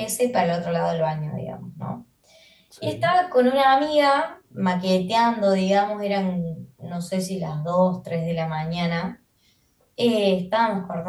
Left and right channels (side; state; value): both; identical; correlation 1.00